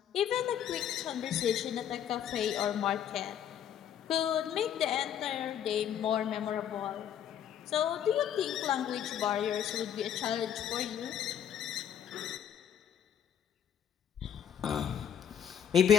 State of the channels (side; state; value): right; quieter; 9.4 dB